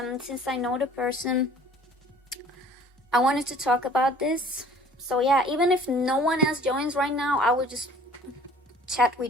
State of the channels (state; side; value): normal; both; correlation 0.51